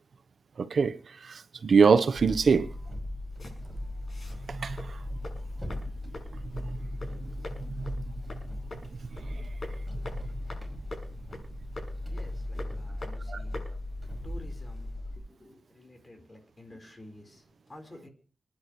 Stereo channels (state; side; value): quieter; left; 3.8 dB